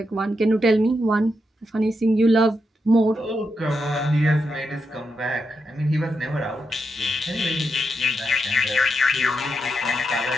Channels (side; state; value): both; normal; correlation 0.84